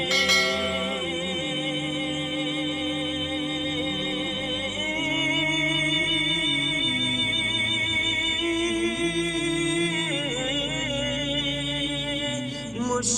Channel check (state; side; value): identical; both; correlation 1.00